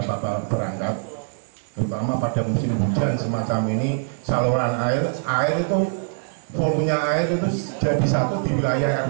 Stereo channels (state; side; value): silent; left; 63 dB below the other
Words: berangkat, terutama pada musim hujan semacam ini. Saluran air itu volumenya air itu jadi satu di wilayah